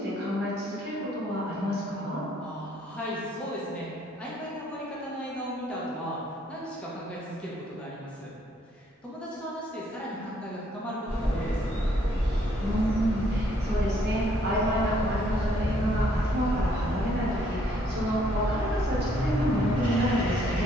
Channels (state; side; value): normal; both; correlation 0.67